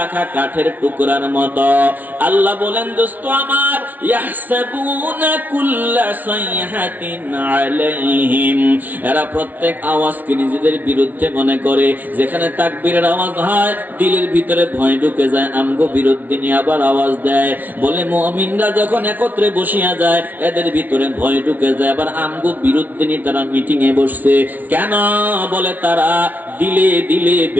কাঠের টুকরার মতো। আল্লাহ বলেন দোস্ত আমার, ইয়াহসাবুনা কুল্লা সাইহাতিন আলাইহিম, এরা প্রত্যেক আওয়াজকে নিজেদের বিরুদ্ধে মনে করে। যেখানে তাকবীরের আওয়াজ হয় দিলের ভিতরে ভয় ঢুকে যায়, আমগো বিরুদ্ধে নিয়ে আবার আওয়াজ দেয়। বলে মুমিনরা যখন একত্রে বসিয়া যায় এদের ভিতরে ভয় ঢুকে যায়, আবার আমগো বিরুদ্ধে নিয়ে তারা মিটিং এ বসছে। কেন? বলে তারা দিলে দিলে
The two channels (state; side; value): late; left; 0.079 ms